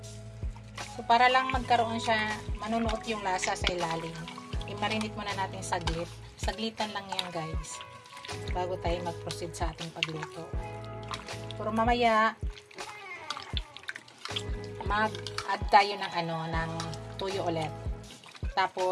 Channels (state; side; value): identical; both; correlation 1.00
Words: So para lang magkaroon siya, manunuot yung lasa sa ilalim. I-marinate muna natin saglit. Saglitan lang yan guys. Bago tayo mag-proceed sa ating pagluto. Pero mamaya mag-add tayo ng ng toyo ulit.